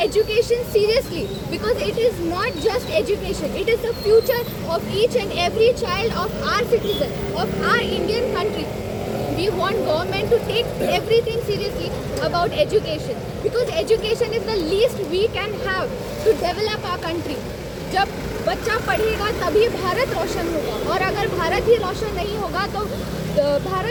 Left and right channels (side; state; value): both; identical; correlation 1.00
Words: education seriously because it is not just education. It is the future of each and every child of our citizen, of our Indian country. We want government to take everything seriously about education because education is the least we can have to develop our country. जब बच्चा पढ़ेगा तभी भारत रोशन होगा और अगर भारत ही रोशन नहीं होगा तो